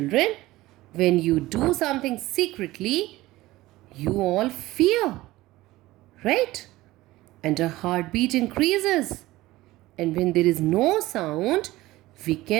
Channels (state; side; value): quieter; left; 17.9 dB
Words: When you do something secretly, you all fear, right? And our heartbeat increases. And when there is no sound, we